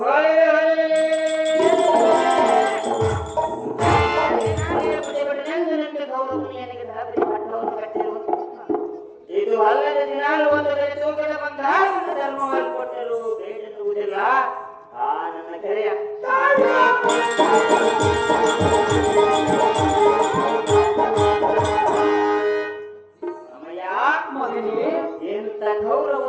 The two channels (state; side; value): identical; both; correlation 1.00